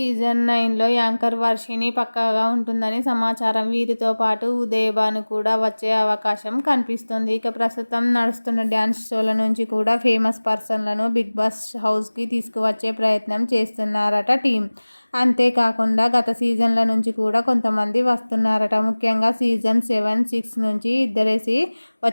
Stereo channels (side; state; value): both; inverted; correlation -1.00